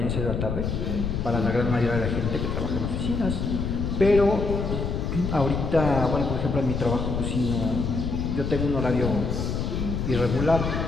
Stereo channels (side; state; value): left; noise; rumble, 2 dB below the sound